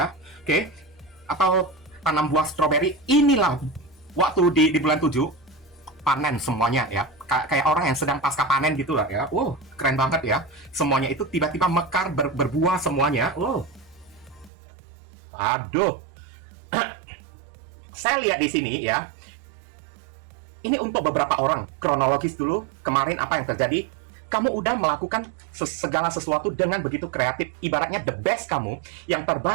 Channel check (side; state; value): left; drops out; at 14.5 s